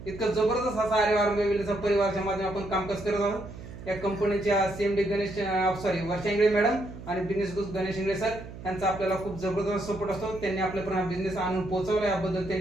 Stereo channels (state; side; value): noise; right; hum, 13 dB below the sound